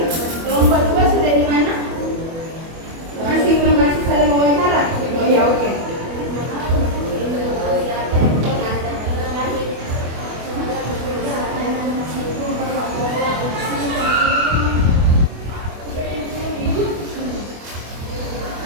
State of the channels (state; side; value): late; left; 24 ms